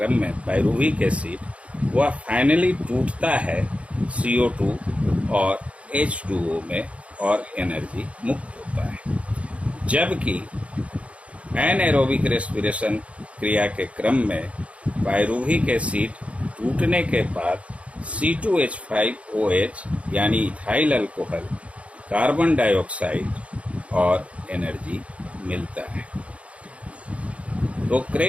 में पाइरूविक एसिड, वह फाइनली टूटता है CO2 और H2O में और एनर्जी मुक्त होता है। जबकि एनएरोबिक रेस्पिरेशन क्रिया के क्रम में पाइरूविक एसिड टूटने के बाद C2H5OH यानी इथाइल अल्कोहल, कार्बन डाइऑक्साइड और एनर्जी मिलता है। तो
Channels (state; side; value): late; left; 0.063 ms